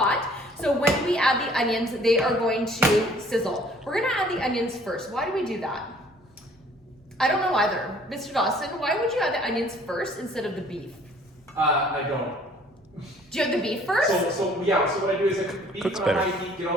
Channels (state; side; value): normal; both; correlation 0.56